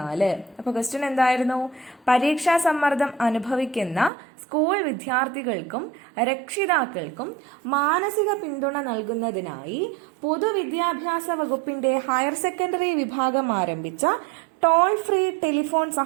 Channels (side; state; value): left; drops out; at 4.1 s